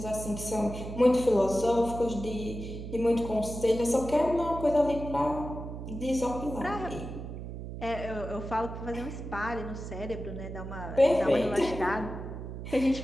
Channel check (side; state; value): right; noise; hum, 8 dB below the sound